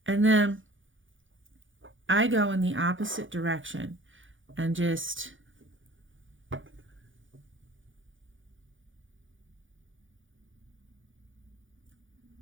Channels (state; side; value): late; left; 0.57 ms